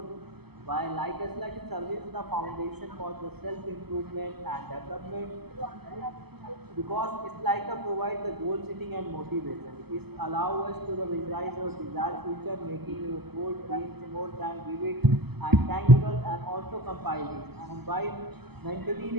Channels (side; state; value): left; late; 0.97 ms